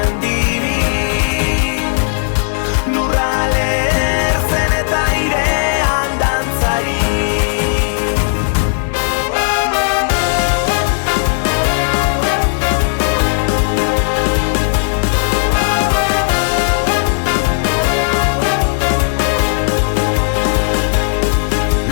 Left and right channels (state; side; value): silent; right; digital silence